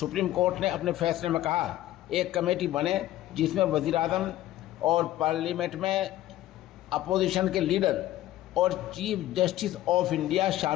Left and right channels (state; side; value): quieter; right; 14.5 dB